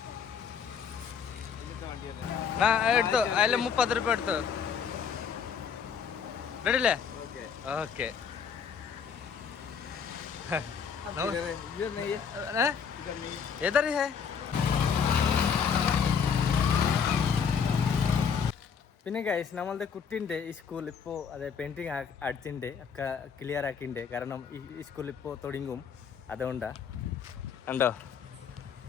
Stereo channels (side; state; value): right; quieter; 6.7 dB